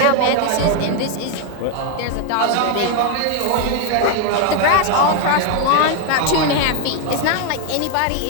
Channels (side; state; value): both; different; correlation 0.01